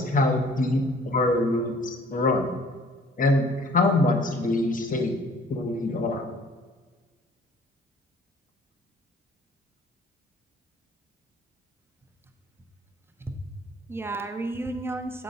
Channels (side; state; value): both; normal; correlation 0.55